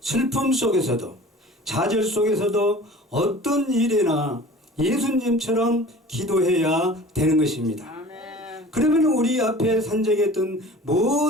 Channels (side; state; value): both; normal; correlation 0.43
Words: 슬픔 속에서도, 좌절 속에서도 어떤 일이나 예수님처럼 기도해야 되는 것입니다. 그러면 우리 앞에 산적했던